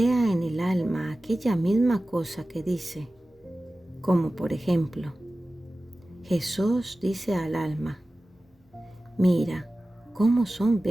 en el alma aquella misma cosa que dice, como por ejemplo, Jesús dice al alma, mira cómo son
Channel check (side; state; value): both; normal; correlation 0.96